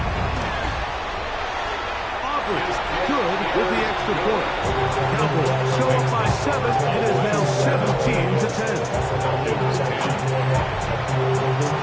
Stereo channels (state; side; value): identical; both; correlation 1.00